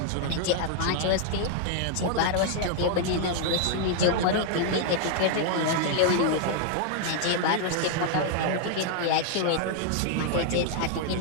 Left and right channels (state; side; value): different; both; correlation 0.00